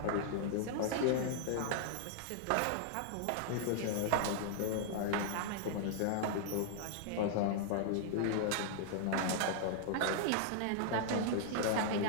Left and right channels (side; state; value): both; different; correlation -0.01